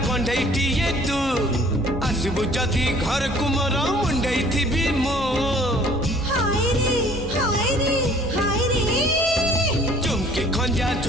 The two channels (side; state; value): both; normal; correlation 0.55